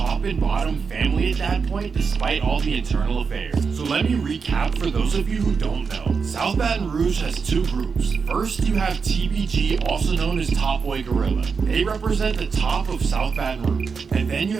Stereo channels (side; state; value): left; quieter; 5.5 dB